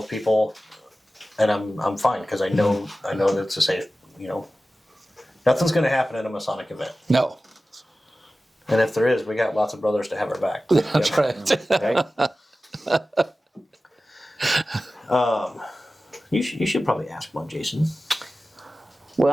people, and I'm fine because I know that it's a safe. Nothing's going to happen at a Masonic event. No. And if there is, we got lots of brothers to have our back. That's right. Okay. You should probably ask one, Jason.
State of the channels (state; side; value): normal; both; correlation 0.95